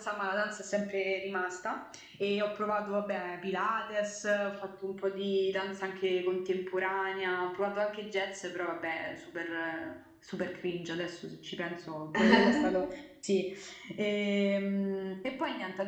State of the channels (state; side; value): identical; both; correlation 1.00